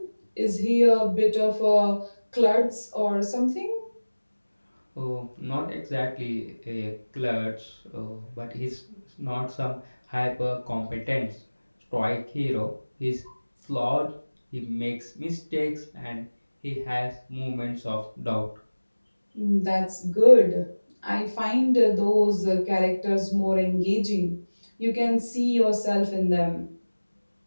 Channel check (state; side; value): inverted; both; correlation -1.00